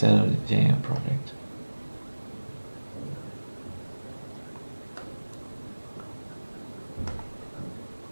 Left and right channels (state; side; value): inverted; both; correlation -1.00